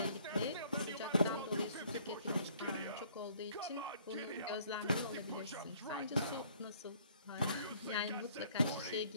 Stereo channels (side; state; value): both; inverted; correlation -0.59